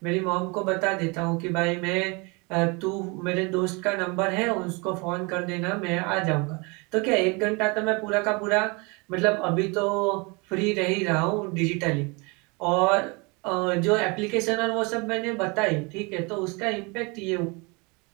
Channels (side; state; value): left; quieter; 29.0 dB